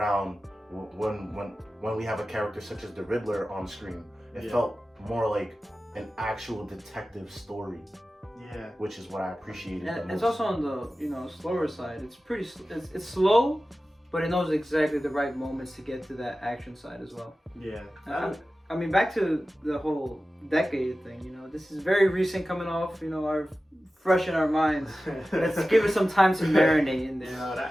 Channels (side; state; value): both; normal; correlation 0.95